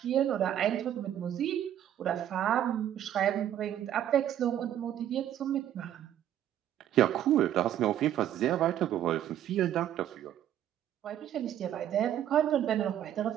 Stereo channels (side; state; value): left; quieter; 11.1 dB